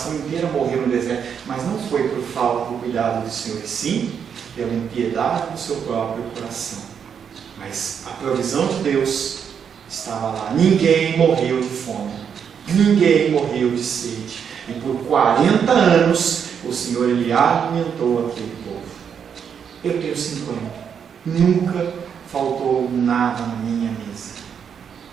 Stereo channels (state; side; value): quieter; left; 7.5 dB